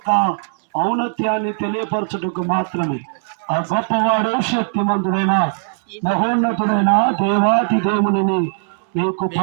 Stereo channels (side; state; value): left; silent; 66 dB below the other